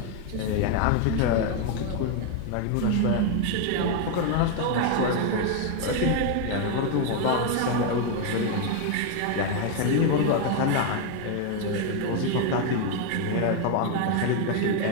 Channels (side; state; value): both; different; correlation 0.01